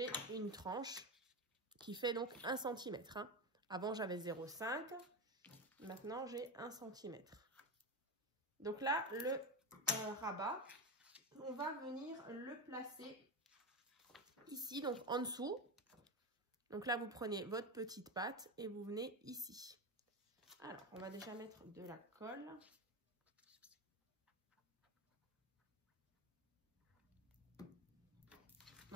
une tranche qui fait donc 1 cm. Hein. Avant, j'avais 0,5. Maintenant, j'ai 1 cm. Donc là, le rabat, on va venir le placer ici, donc en dessous. Donc là, vous prenez votre petite patte et vous venez ici. Alors, on va déjà mettre de la colle.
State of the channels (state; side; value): normal; both; correlation 0.16